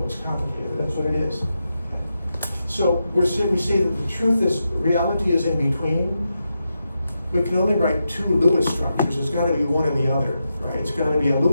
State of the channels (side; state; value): both; inverted; correlation -0.87